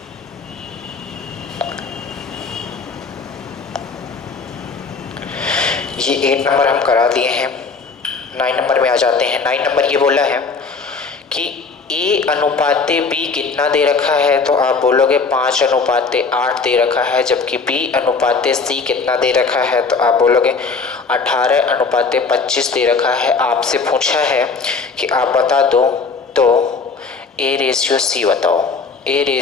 ये 8 नंबर हम करा दिए हैं, 9 नंबर में आ जाते हैं। 9 नंबर ये बोला है कि A अनुपाते B कितना दे रखा है, तो आप बोलोगे 5 अनुपाते 8 दे रखा है, जबकि B अनुपाते C कितना दे रखा है, तो आप बोलोगे 18 अनुपाते 25 दे रखा है। आपसे पूछा है कि आप बता दो तो A रेशियो C बताओ, A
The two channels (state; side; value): quieter; right; 4.7 dB